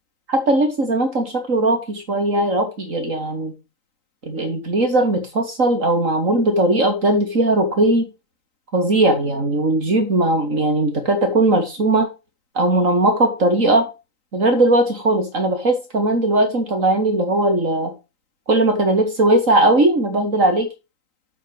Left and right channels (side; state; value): left; late; 3.9 ms